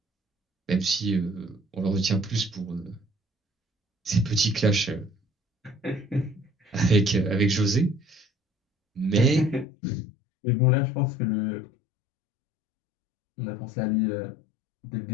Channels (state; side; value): drops out; right; at 9.7 s